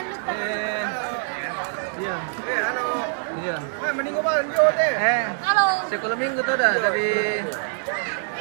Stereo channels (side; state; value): left; silent; 62 dB below the other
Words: lupa. Iya. Halo. Iya. Wah, meninggal bang, jauh deh. Halo. Sekolah minggu tuh dah dari